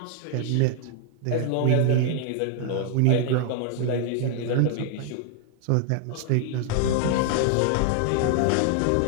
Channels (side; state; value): both; different; correlation 0.00